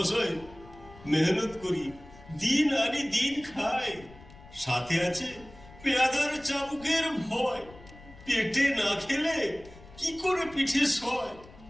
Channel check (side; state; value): left; noise; rumble, 21 dB below the sound